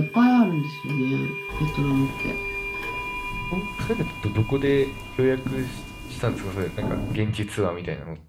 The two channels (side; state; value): both; identical; correlation 1.00